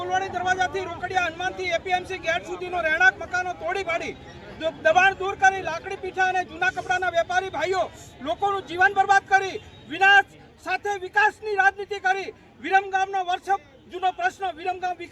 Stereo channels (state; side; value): identical; both; correlation 1.00